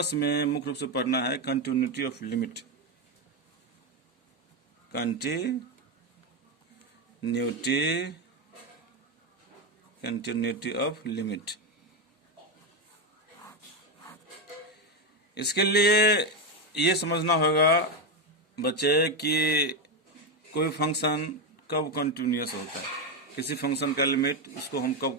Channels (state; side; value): normal; both; correlation 0.10